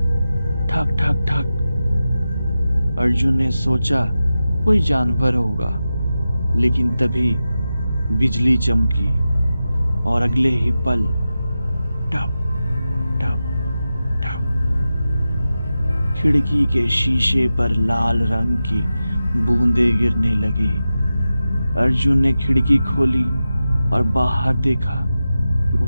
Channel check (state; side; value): inverted; both; correlation -0.93